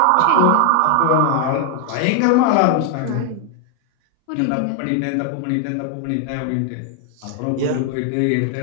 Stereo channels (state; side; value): different; both; correlation 0.00